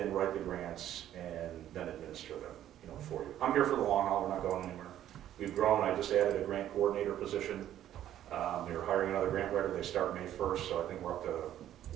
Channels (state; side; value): quieter; left; 11.8 dB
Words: write the grants, and then administer them, you know, for you. I'm here for the long haul, we're not going anywhere. We've grown, I just added a grant coordinator position. We were hiring another grant writer, they start May 1st, so I think we're up to